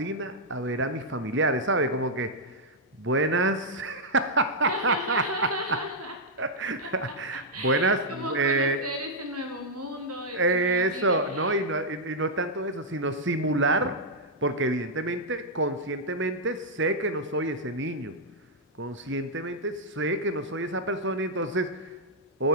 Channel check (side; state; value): both; normal; correlation -0.05